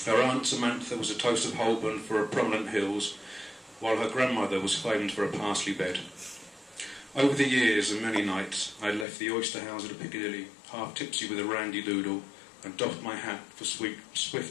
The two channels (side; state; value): right; drops out; at 9.1 s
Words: Her aunt Samantha was a toast of Holborn for her prominent hills, while her grandmother was famed for a parsley bed. Over the years and many nights I had left the oyster house at Piccadilly, half tipsy with a randy doodle, and doffed my hat for